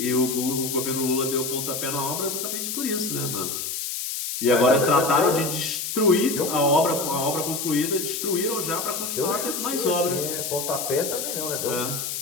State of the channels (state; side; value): noise; left; hiss, 4 dB below the sound